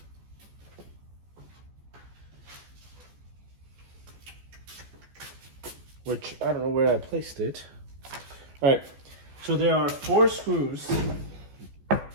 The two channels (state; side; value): late; left; 14 ms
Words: Which I don't know where I placed it. All right, so there are 4 screws.